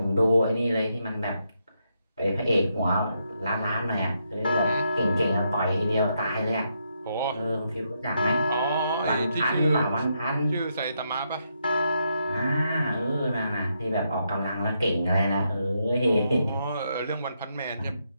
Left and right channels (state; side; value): inverted; both; correlation -0.80